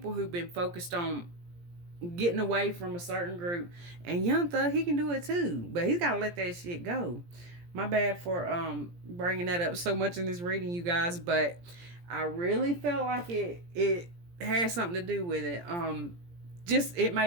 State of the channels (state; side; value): late; left; 17 ms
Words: who've been focused on getting away from a certain group. And Young Thug, he can do it too, but he's got to let that shit go. My bad for bringing that up so much in this reading, you guys, but I really felt like it had something to do with it. Just it